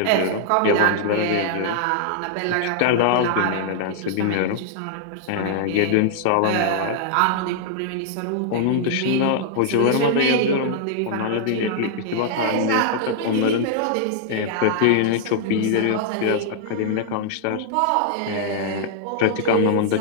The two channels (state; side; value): different; both; correlation -0.01